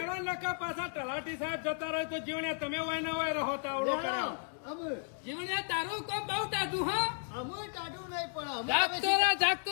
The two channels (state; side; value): silent; right; 55 dB below the other